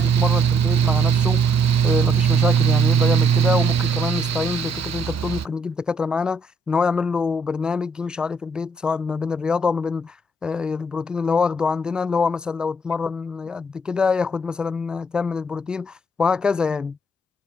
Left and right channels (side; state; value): both; normal; correlation 0.68